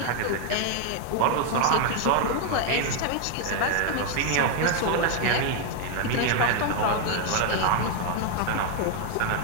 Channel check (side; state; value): both; different; correlation 0.00